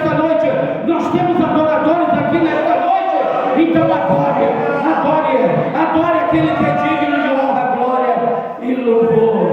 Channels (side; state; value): both; identical; correlation 1.00